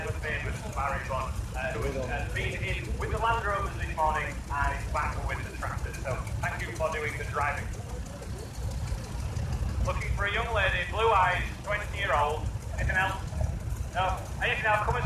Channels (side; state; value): both; identical; correlation 1.00